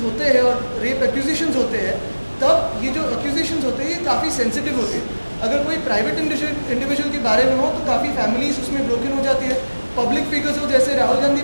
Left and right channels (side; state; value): both; inverted; correlation -1.00